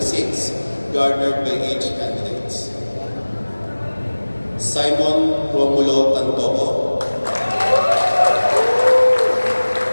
garnered by each candidates. Simon Romulo Tantoco.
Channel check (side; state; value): both; inverted; correlation -1.00